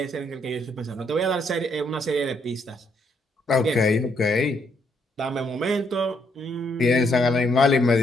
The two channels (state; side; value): normal; both; correlation 0.73